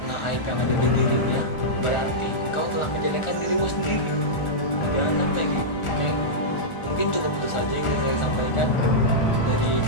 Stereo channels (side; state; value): right; late; 1.4 ms